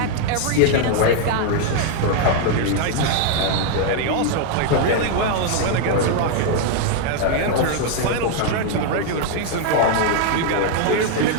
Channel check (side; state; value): both; different; correlation 0.00